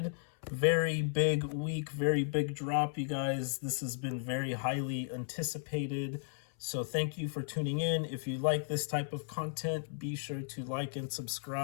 Very big week, very big drop, you guys. This has been very highly anticipated. So thank you for tuning in. If you like this type of content, be sure to like and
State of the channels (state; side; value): silent; right; 55 dB below the other